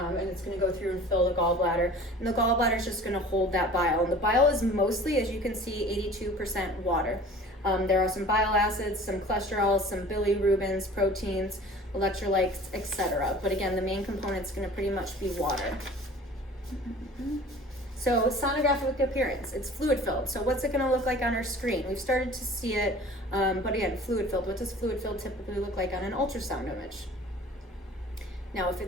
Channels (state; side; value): normal; both; correlation 0.44